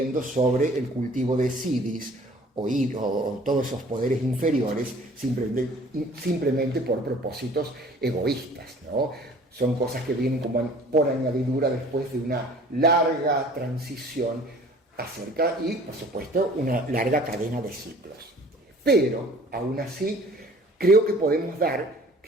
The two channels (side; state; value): both; normal; correlation 0.51